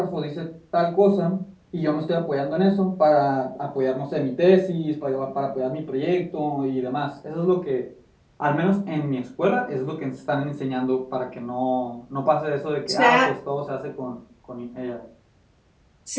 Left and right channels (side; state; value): both; identical; correlation 1.00